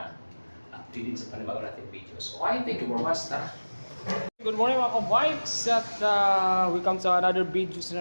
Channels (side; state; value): both; inverted; correlation -1.00